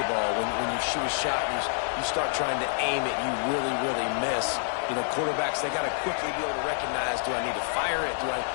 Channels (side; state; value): right; silent; digital silence